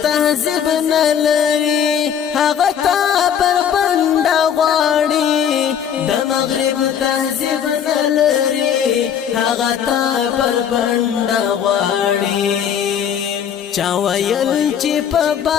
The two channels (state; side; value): quieter; right; 8.5 dB